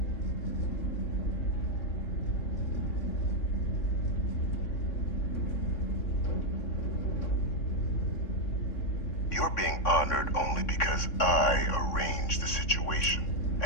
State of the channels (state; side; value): late; right; 3.6 ms